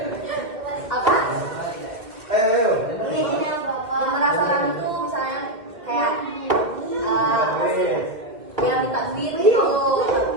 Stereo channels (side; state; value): left; late; 2.0 ms